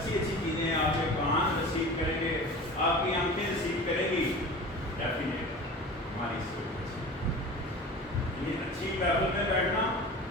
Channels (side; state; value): both; normal; correlation 0.36